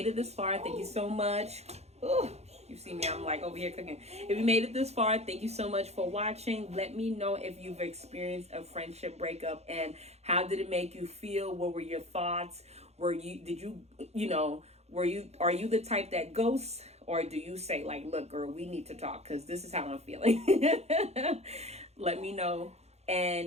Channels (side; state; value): left; late; 0.31 ms